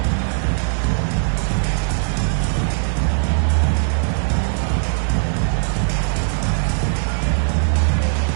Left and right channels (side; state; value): left; silent; 66 dB below the other